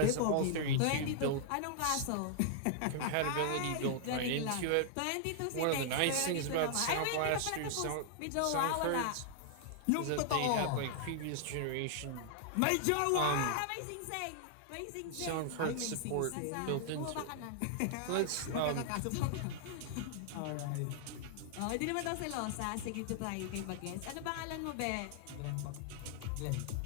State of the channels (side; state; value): both; different; correlation -0.01